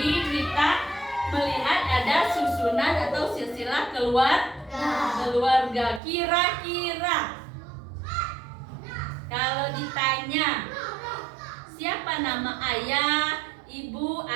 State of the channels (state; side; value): drops out; left; at 6.0 s